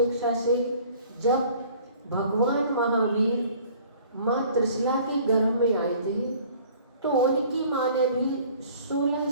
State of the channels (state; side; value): inverted; both; correlation -0.52